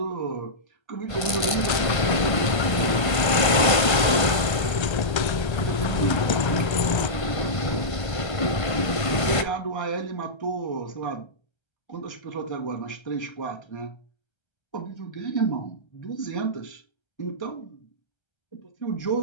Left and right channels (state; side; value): late; right; 1.5 ms